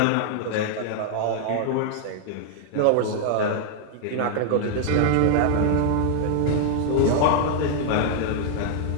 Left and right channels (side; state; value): both; different; correlation 0.00